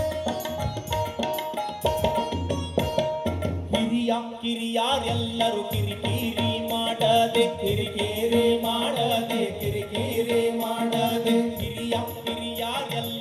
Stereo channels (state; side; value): identical; both; correlation 1.00